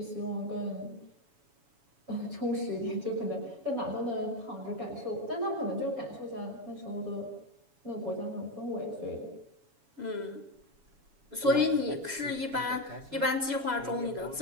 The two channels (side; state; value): left; late; 7.1 ms